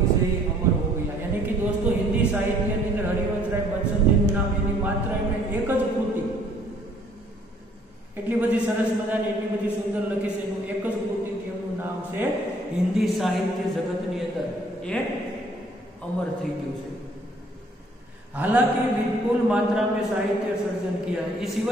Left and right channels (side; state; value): both; normal; correlation 0.60